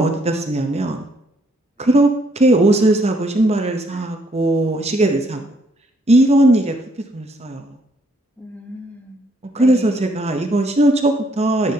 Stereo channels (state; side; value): normal; both; correlation 0.69